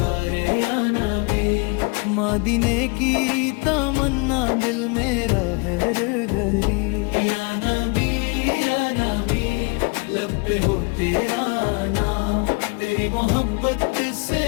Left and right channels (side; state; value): right; quieter; 31.7 dB